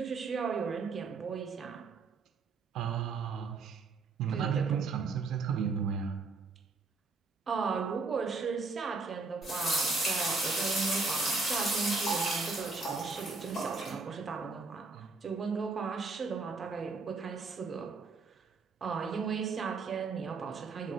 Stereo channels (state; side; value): quieter; left; 4.2 dB